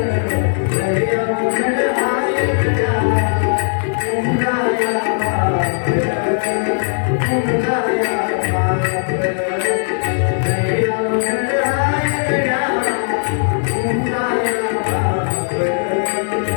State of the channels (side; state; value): right; silent; digital silence